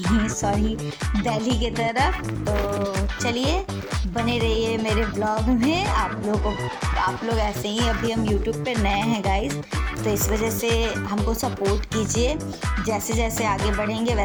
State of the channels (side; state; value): both; identical; correlation 1.00